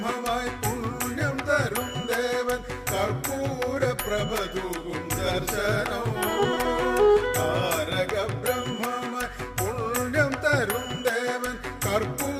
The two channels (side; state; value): both; identical; correlation 1.00